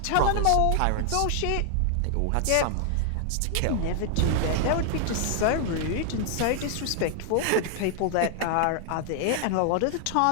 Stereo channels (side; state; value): both; different; correlation 0.00